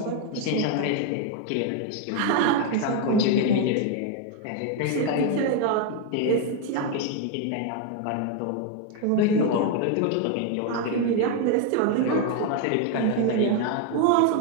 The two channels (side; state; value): both; different; correlation 0.01